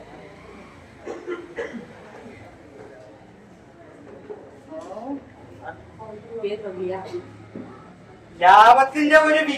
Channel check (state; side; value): identical; both; correlation 1.00